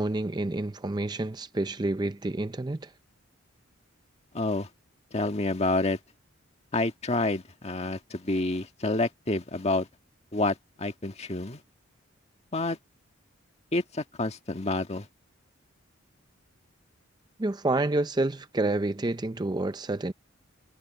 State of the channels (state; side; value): normal; both; correlation 0.51